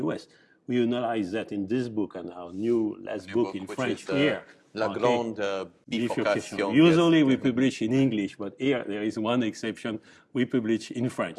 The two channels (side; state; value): both; identical; correlation 1.00